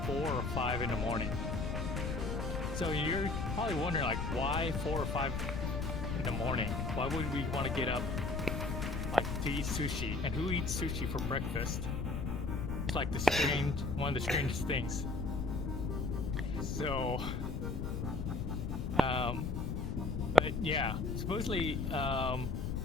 4 or 5 in the morning. So you're probably wondering, like, why 4 or 5 in the morning? Why would we want to get up, like, to eat sushi? And who eats sushi for breakfast? It's like one of the strangest things. So, but yeah, supposedly,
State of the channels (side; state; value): left; noise; rumble, 1 dB below the sound